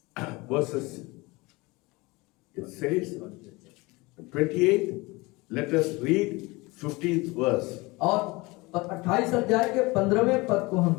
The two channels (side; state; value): right; quieter; 23.7 dB